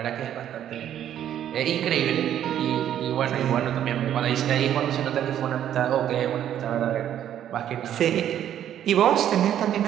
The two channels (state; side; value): quieter; left; 10.6 dB